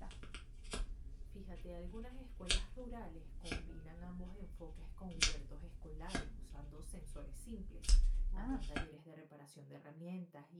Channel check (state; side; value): identical; both; correlation 1.00